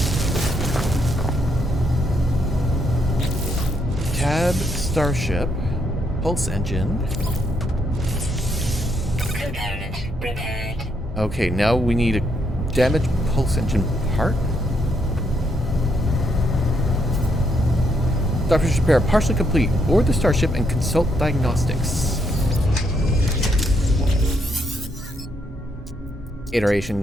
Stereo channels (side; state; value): both; normal; correlation 0.75